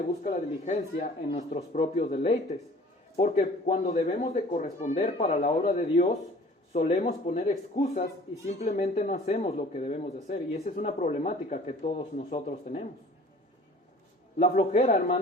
busca la diligencia en nuestros propios deleites. Porque cuando debemos de corresponder para la obra de Dios, solemos poner excusas y simplemente no hacemos lo que debemos de hacer. Y esa es una problemática que todos nosotros tenemos. La flojera,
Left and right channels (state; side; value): normal; both; correlation 0.48